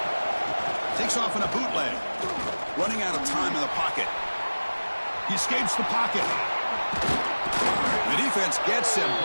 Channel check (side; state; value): both; inverted; correlation -1.00